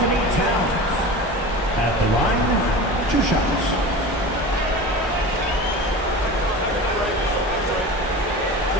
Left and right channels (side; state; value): both; normal; correlation 0.32